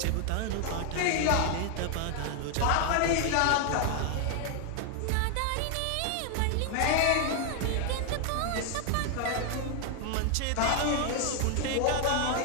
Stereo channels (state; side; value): different; both; correlation 0.00